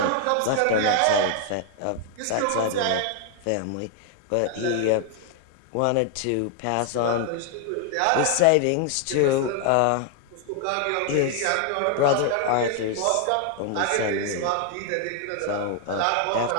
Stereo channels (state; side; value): different; both; correlation 0.00